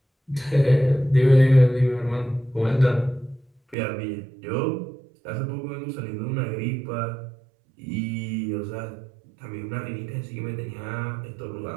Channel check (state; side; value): drops out; left; at 3.8 s